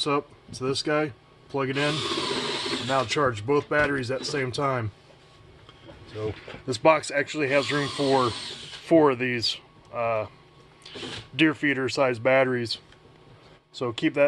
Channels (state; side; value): identical; both; correlation 1.00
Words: up to this guy, plug it in, and now charge both batteries at the same time. So this box actually has room for 4 of these deer feeder size batteries. So keep